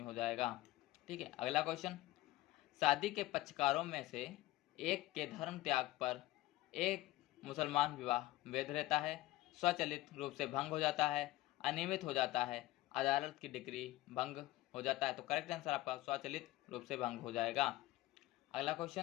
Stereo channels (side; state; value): right; quieter; 17.0 dB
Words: हो जाएगा। ठीक है, अगला क्वेश्चन, शादी के पक्षकारों में से एक के धर्म त्याग पर एक मुसलमान विवाह वैध रहता है, स्वचालित रूप से भंग हो जाता है, अनियमित हो जाता है, अदालत की डिग्री भंग हो जाता है। तो करेक्ट आंसर आपका स्वचालित रूप से भंग हो जाएगा। अगला